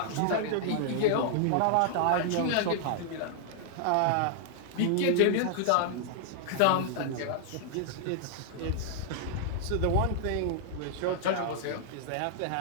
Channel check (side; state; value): both; different; correlation -0.01